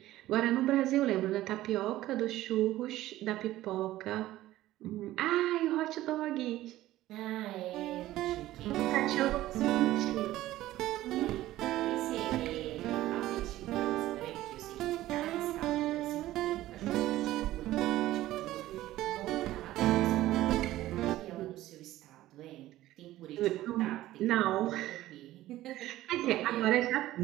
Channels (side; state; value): left; quieter; 15.3 dB